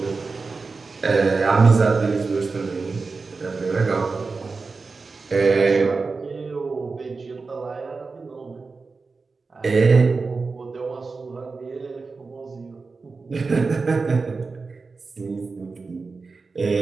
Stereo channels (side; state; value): left; quieter; 4.2 dB